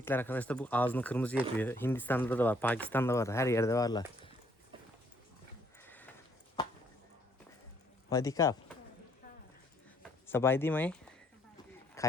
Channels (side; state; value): both; normal; correlation 0.67